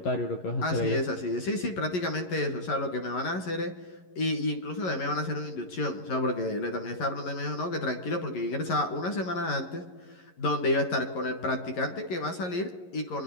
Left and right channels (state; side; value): late; right; 11 ms